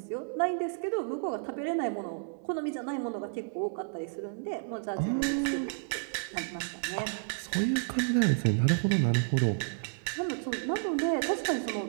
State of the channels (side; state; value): left; silent; digital silence